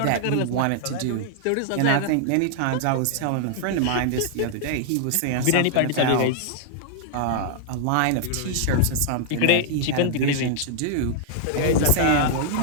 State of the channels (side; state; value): both; different; correlation -0.01